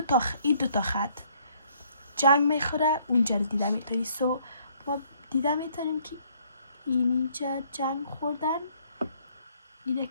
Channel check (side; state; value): both; inverted; correlation -0.65